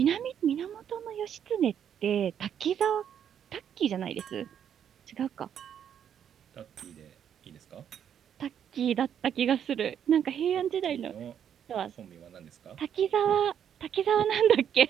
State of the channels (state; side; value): quieter; left; 8.9 dB